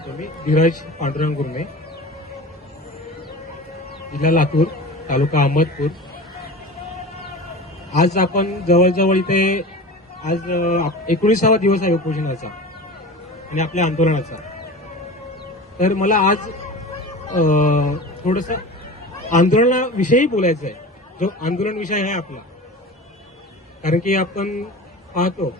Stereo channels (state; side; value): normal; both; correlation 0.33